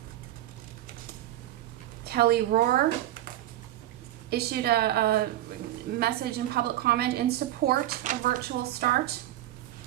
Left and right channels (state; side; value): quieter; left; 13.9 dB